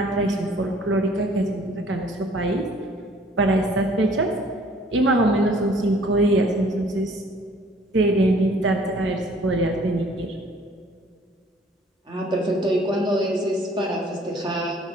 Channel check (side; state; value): both; normal; correlation 0.56